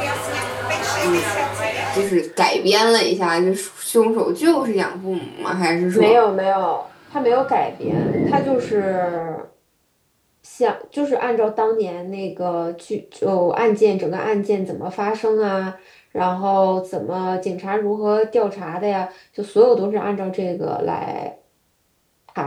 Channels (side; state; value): both; identical; correlation 1.00